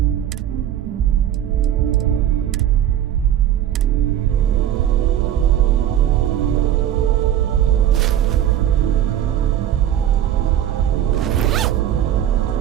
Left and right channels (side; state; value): left; quieter; 11.0 dB